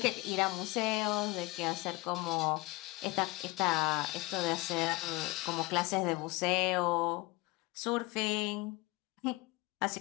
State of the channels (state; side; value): quieter; right; 22.0 dB